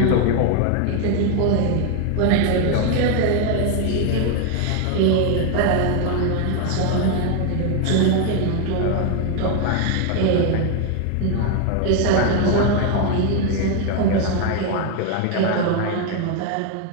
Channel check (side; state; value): both; different; correlation 0.01